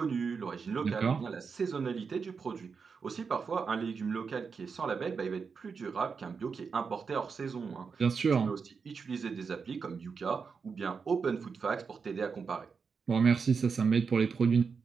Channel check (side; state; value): left; quieter; 5.5 dB